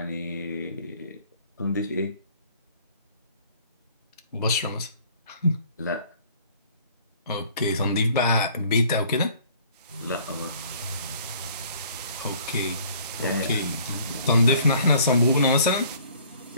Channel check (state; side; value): inverted; both; correlation -0.55